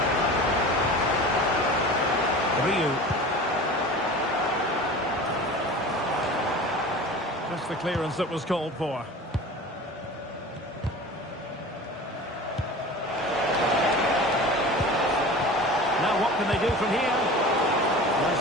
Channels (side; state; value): both; normal; correlation 0.37